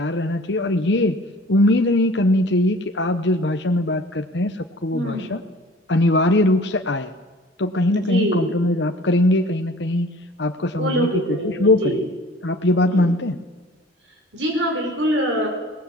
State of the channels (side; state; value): both; normal; correlation 0.48